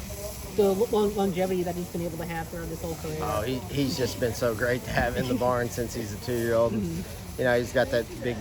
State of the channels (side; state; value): both; identical; correlation 1.00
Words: longevity that he's been able to have throughout his whole career. Oh, he's just been so great to have in the barn since he's a 2-year-old. He's got that